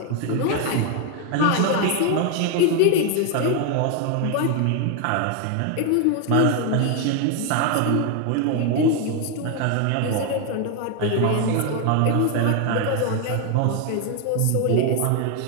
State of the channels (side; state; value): both; different; correlation 0.01